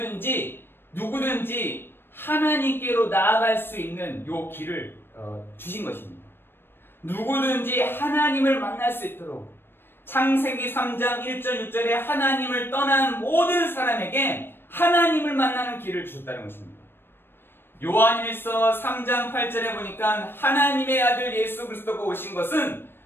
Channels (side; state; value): right; late; 0.10 ms